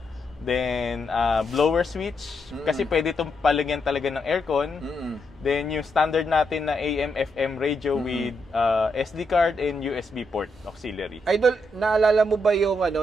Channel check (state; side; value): normal; both; correlation 0.80